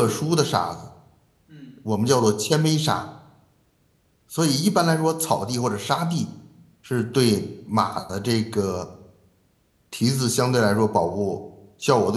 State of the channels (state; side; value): identical; both; correlation 1.00